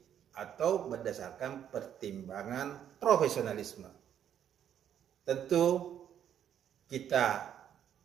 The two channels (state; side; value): quieter; left; 9.6 dB